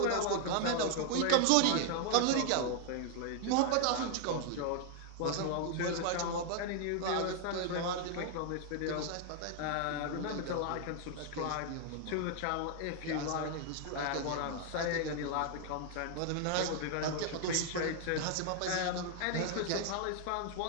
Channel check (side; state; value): both; different; correlation 0.00